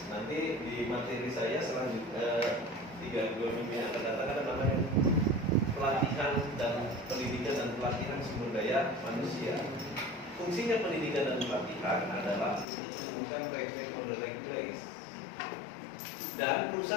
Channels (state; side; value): drops out; right; at 12.7 s